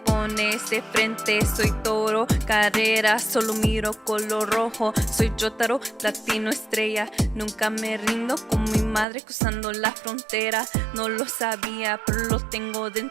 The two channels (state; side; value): drops out; left; at 9.1 s